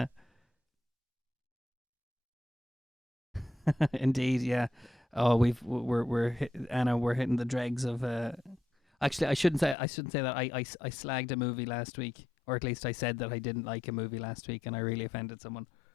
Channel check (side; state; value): right; drops out; at 9.8 s